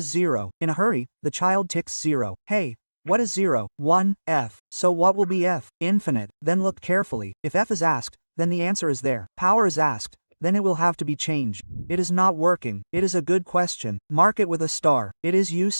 0. In a hurry, the child ticks 0. Hey, what is 0? 1, f. So what will be f? Infinite. Then look carefully. If f is asked, then the answer is there. Power is asked, then it will have to be changed. It is not working. It is a good question. Mark it with a star. It is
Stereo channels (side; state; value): both; inverted; correlation -1.00